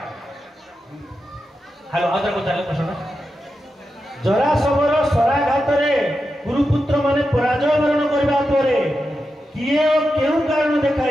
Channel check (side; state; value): both; normal; correlation 0.89